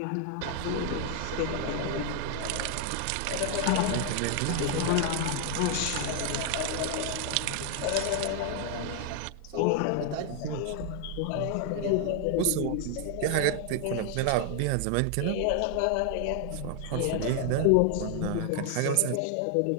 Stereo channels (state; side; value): different; both; correlation 0.00